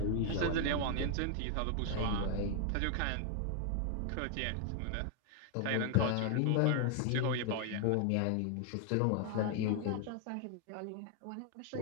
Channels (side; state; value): both; different; correlation 0.00